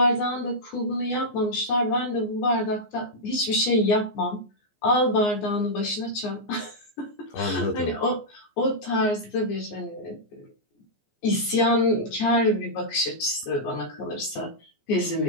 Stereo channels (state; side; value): late; right; 14 ms